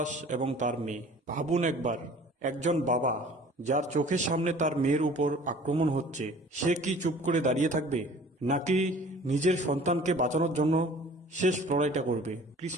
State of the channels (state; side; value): normal; both; correlation 0.48